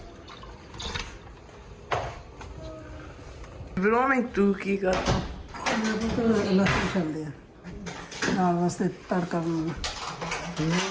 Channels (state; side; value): identical; both; correlation 1.00